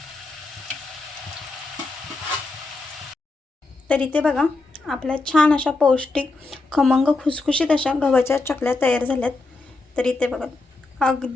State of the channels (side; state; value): right; quieter; 3.4 dB